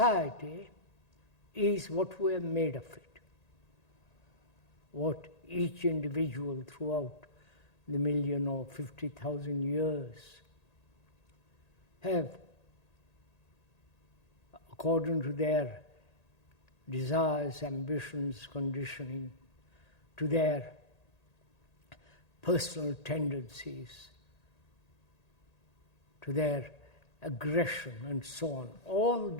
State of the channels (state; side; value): late; right; 1.8 ms